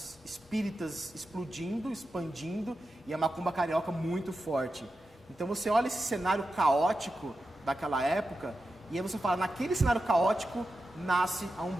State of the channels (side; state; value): both; normal; correlation 0.90